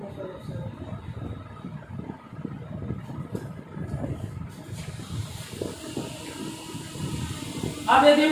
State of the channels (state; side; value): identical; both; correlation 1.00